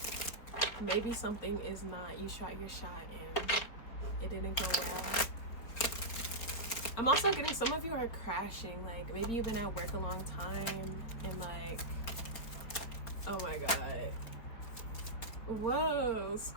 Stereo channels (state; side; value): late; right; 4.4 ms